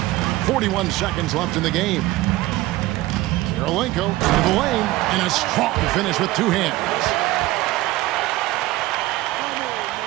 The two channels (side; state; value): left; quieter; 17.8 dB